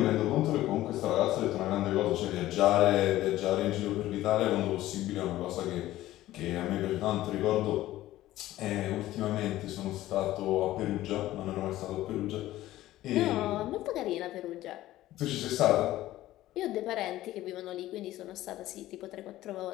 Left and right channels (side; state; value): right; quieter; 15.2 dB